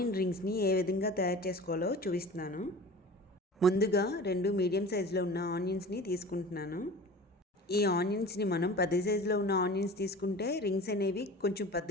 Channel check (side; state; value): both; normal; correlation 0.38